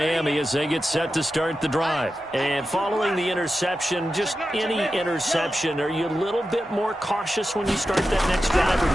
as they get set to start the drive. And following the interception, just any interception, are you a little bit more cautious when you start that next drive, or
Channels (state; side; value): normal; both; correlation 0.91